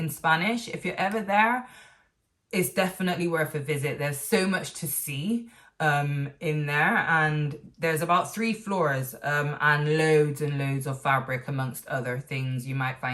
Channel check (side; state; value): both; identical; correlation 1.00